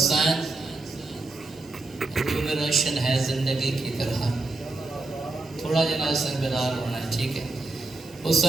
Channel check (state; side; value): quieter; left; 3.2 dB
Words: روح میں روشن ہے زندگی کی طرح. تھوڑا جناب سن بیدار ہونا ہے, ٹھیک ہے.